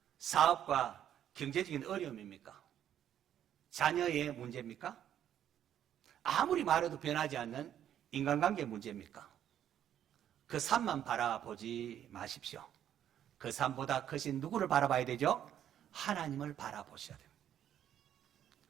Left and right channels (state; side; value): quieter; left; 10.4 dB